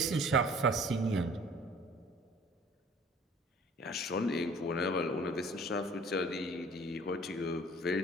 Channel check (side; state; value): both; normal; correlation 0.50